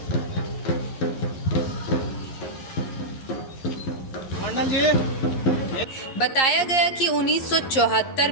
मंडल जी, बताया गया कि 1974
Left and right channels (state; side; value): late; right; 11 ms